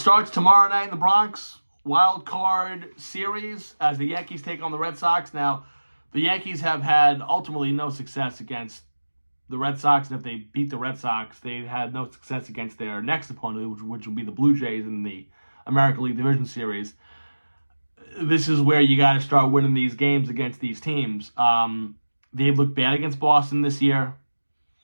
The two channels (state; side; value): inverted; both; correlation -1.00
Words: tomorrow night in the Bronx. Wild card series as the Yankees take on the Red Sox. Now, the Yankees have had ultimately no success against the Red Sox, and if they beat the Red Sox, they've had no success against their next opponent, which will be the Blue Jays in the American League Division Series. This is where you got to start winning these games against these teams. They've looked bad against Boston this year.